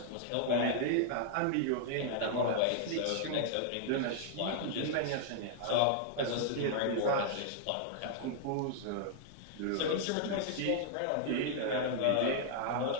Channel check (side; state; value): both; different; correlation -0.01